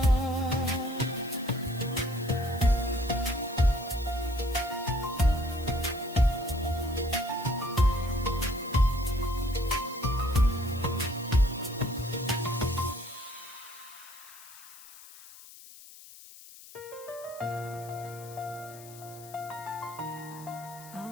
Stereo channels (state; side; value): noise; left; hiss, 18 dB below the sound